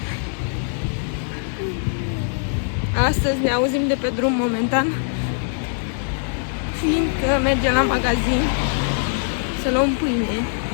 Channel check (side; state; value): right; silent; digital silence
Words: Astăzi ne auzim de pe drum momentan, fiindcă mergem la magazin să luăm pâine.